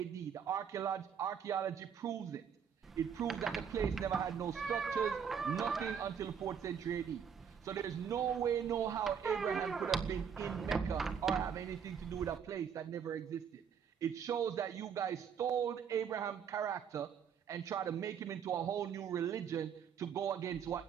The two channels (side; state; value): left; quieter; 7.5 dB